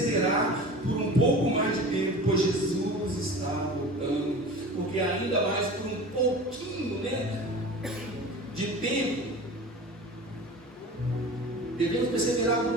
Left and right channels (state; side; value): normal; both; correlation 0.37